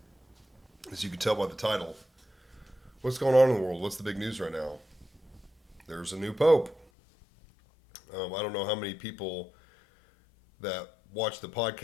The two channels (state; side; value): drops out; right; at 6.9 s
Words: as you can tell by the title, what's going on in the world? What's the big news right now? There's a new pope. I don't know how many people that watch the